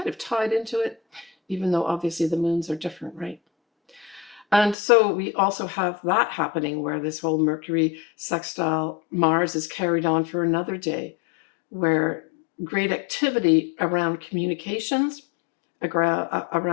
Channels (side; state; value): right; drops out; at 4.8 s